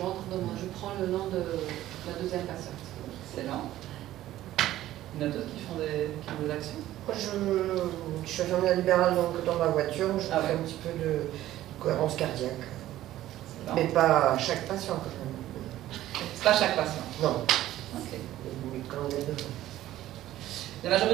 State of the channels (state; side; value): quieter; left; 14.1 dB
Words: dans moi. Je prends le nom de la deuxième patiente. Excellent. Il y en a d'autres qui font des actions? Moi, je suis infirmière libérale, donc dans ma voiture, je fais un petit peu de cohérence cardiaque. Mais pas à chaque patient, quand même. C'est pas chaque patient? Non. Ok. La